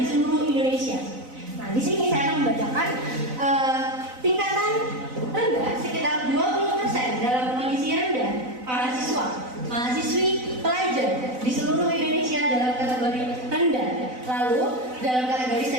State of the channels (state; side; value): late; left; 4.0 ms